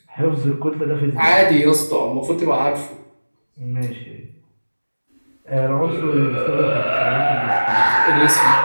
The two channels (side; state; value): both; inverted; correlation -1.00